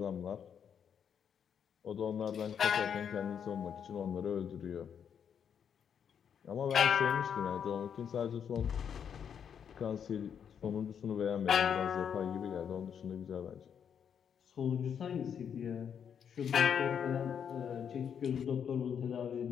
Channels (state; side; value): quieter; right; 7.9 dB